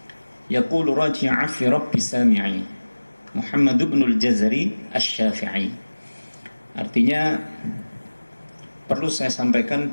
yaqulu raji'a fi rabbi sami'i Muhammad ibn al-Jazari asy-Syafi'i. Artinya perlu saya sampaikan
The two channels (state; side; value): inverted; both; correlation -1.00